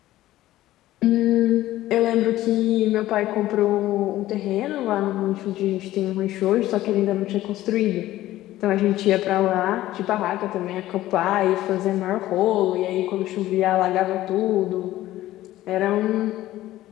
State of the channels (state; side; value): quieter; right; 15.1 dB